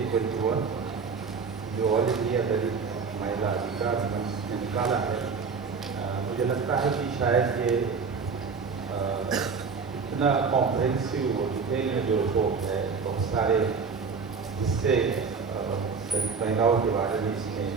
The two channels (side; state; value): left; quieter; 5.2 dB